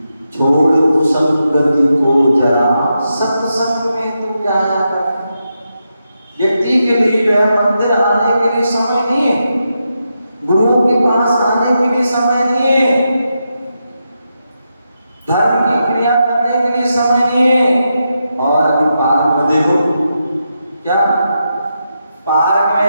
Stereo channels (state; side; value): inverted; both; correlation -0.85